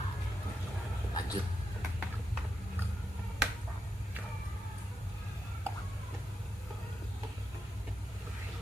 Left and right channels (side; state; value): both; normal; correlation 0.85